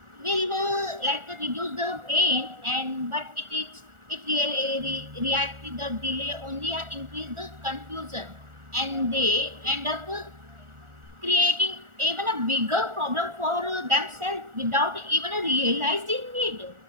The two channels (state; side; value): late; left; 1.4 ms